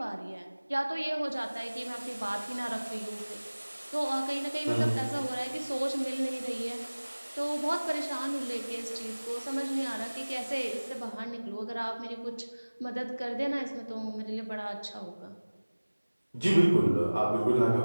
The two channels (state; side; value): inverted; both; correlation -1.00